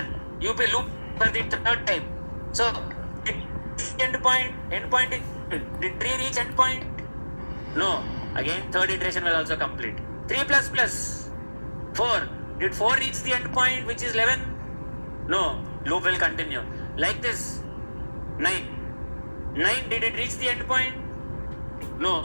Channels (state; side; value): inverted; both; correlation -1.00